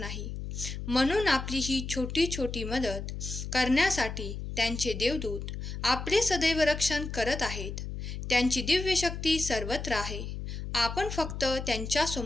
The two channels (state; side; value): noise; left; hum, 6 dB below the sound